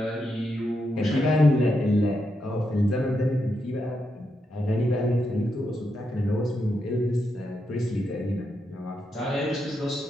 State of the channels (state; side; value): normal; both; correlation 0.83